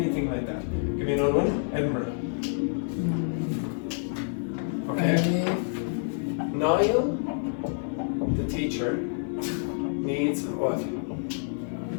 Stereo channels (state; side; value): silent; right; digital silence